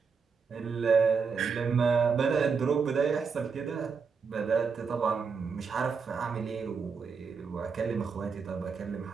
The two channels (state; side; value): quieter; left; 5.5 dB